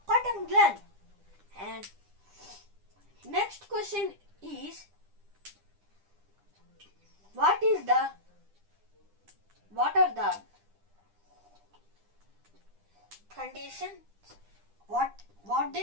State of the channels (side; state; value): left; late; 9.9 ms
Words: cotton gland? And next question is, what is the what are the conditions? What